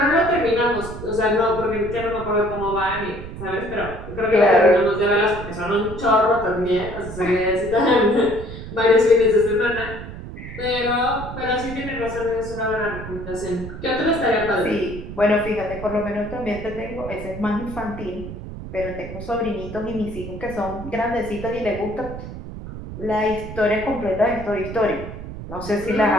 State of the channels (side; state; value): right; noise; rumble, 10 dB below the sound